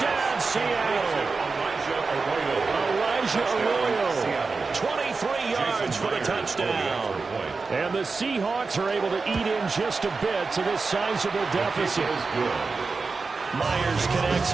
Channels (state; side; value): quieter; left; 4.3 dB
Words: Seattle. Elijah Arroyo. 23 yards for the touchdown. And the Seahawks are able to eat in just a bit to this sizable deficit. Myers connects